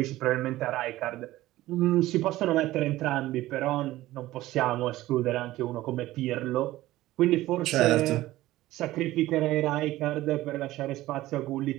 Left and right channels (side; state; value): left; quieter; 16.4 dB